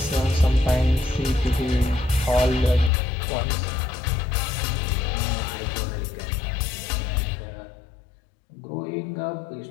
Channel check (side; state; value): right; drops out; at 2.9 s